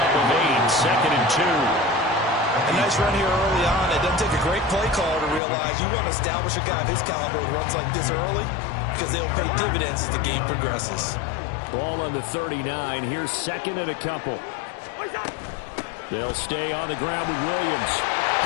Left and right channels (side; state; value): right; drops out; at 5.4 s